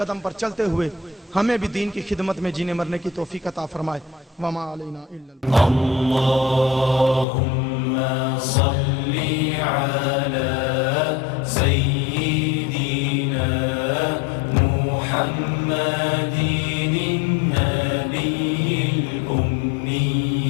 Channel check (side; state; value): right; drops out; at 7.2 s